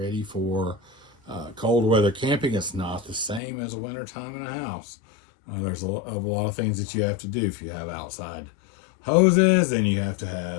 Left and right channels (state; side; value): drops out; right; at 3.4 s